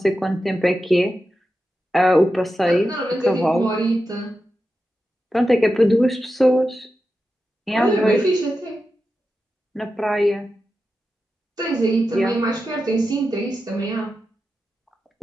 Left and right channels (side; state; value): both; normal; correlation 0.90